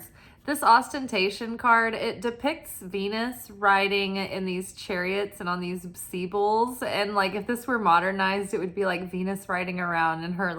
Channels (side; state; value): both; identical; correlation 1.00